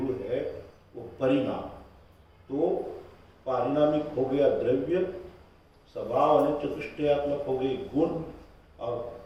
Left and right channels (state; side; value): identical; both; correlation 1.00